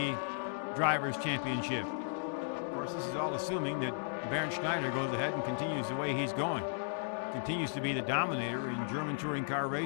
Drivers' Championship. This is all assuming that Bernd Schneider goes ahead and continues the way he's going. Continues to be the dominator in German touring car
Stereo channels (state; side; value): silent; right; digital silence